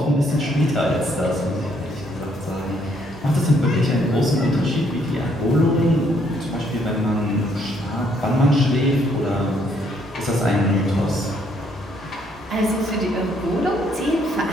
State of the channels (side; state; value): both; normal; correlation 0.69